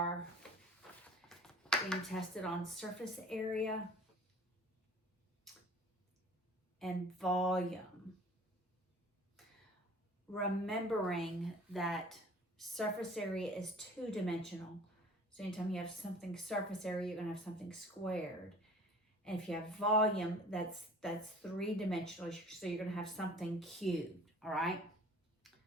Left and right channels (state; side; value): normal; both; correlation 0.47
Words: being tested on surface area and volume. Remembering that surface area is two-dimensional. So anytime you have something surface area, you're going to have something squared. And if you have volume, that's three-dimensional. So you're going to have something cubed, all right?